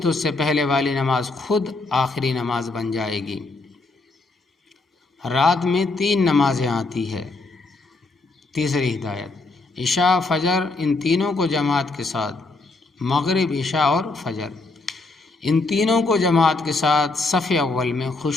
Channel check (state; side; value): quieter; right; 3.4 dB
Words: اس سے پہلے والی نماز خود آخری نماز بن جائے گی۔ رات میں 3 نمازیں آتی ہے۔ تیسری ہدایت، عشاء فجر ان تینوں کو جماعت کے ساتھ، مغرب عشاء اور فجر ان تینوں کو جماعت کے ساتھ صف اول میں